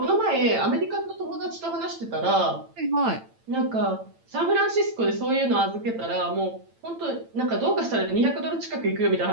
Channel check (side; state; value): left; late; 8.9 ms